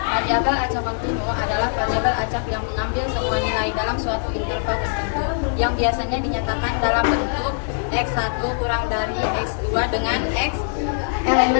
acak kontinu adalah variabel acak yang mengambil semua nilai dalam suatu interval tertentu yang biasanya dinyatakan dalam bentuk X1 kurang dari X2 dengan X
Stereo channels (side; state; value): right; silent; digital silence